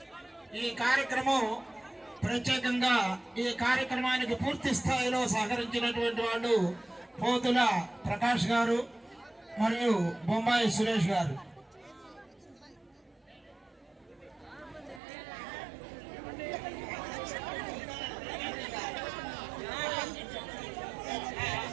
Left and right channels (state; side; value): drops out; left; at 15.0 s